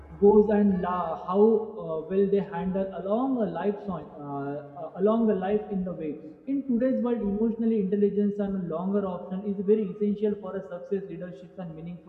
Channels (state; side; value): identical; both; correlation 1.00